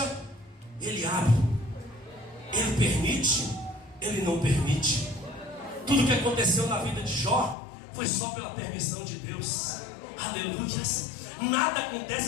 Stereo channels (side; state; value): right; drops out; at 7.6 s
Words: ele abre. Ele permite, ele não permite. Tudo que aconteceu na vida de Jó foi só pela permissão de Deus. Aleluia. Nada acontece